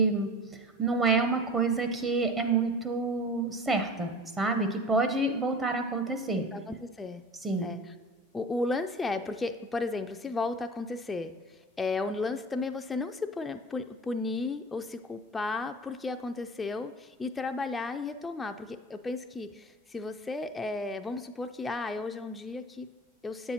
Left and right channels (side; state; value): both; normal; correlation 0.37